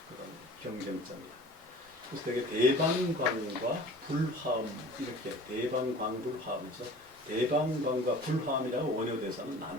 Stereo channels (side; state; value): both; normal; correlation 0.43